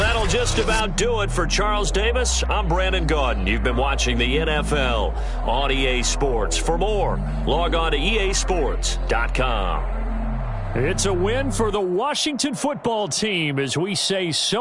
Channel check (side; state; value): both; identical; correlation 1.00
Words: just about do it for Charles Davis. I'm Brandon Gaudin. You've been watching the NFL on EA Sports. For more, log on to easports.com. It's a win for the Washington football team as we say